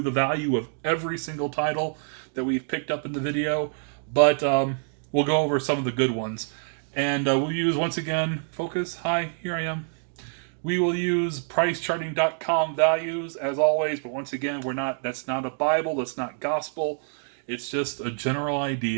value of every single title that we've picked up in the video, but we'll go over some of the good ones. And we'll use, once again, focus. Hi, here I am. We will use pricecharting.com values as always, but once again, that's not a Bible, that's not gospel. It's just a general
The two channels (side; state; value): left; silent; 61 dB below the other